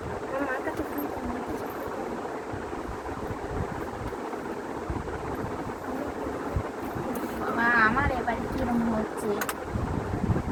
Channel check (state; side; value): identical; both; correlation 1.00